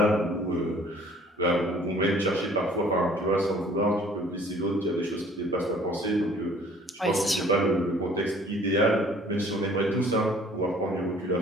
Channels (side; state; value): both; normal; correlation 0.54